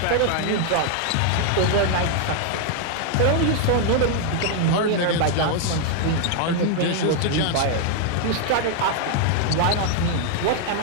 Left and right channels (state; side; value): different; both; correlation 0.00